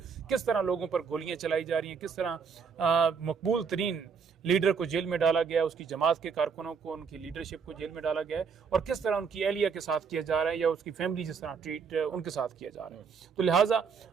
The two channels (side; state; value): left; quieter; 6.0 dB